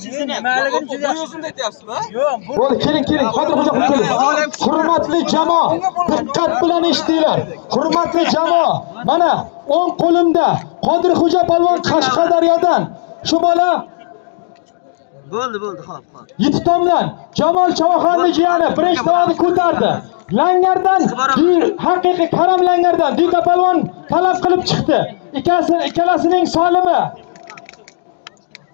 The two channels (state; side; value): silent; right; digital silence